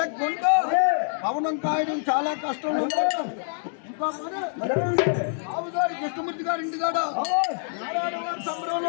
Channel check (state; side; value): silent; right; digital silence